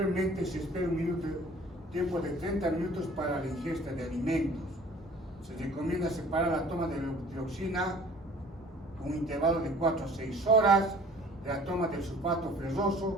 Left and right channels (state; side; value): normal; both; correlation 0.50